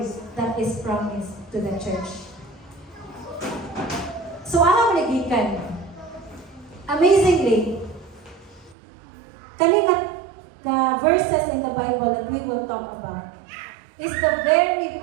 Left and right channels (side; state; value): left; drops out; at 8.8 s